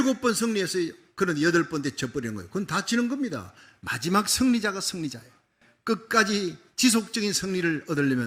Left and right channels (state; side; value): identical; both; correlation 1.00